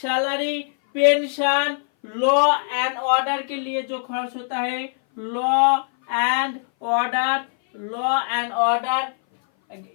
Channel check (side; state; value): right; silent; 58 dB below the other